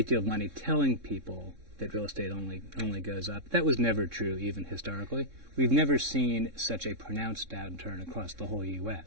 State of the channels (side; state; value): left; late; 3.6 ms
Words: deal of money telling people that real estate only goes up. That was never true, even historically. We've never seen such a pronounced downturn across the whole